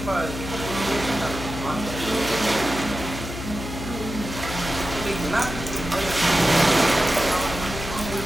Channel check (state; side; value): noise; left; hum, 8 dB below the sound